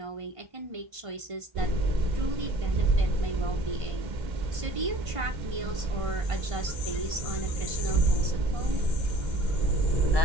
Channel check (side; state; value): left; late; 1.5 ms